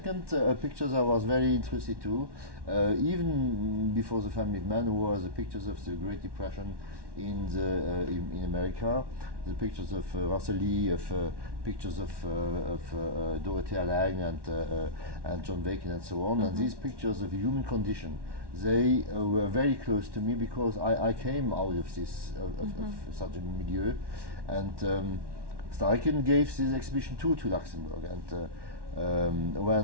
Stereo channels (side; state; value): left; late; 1.1 ms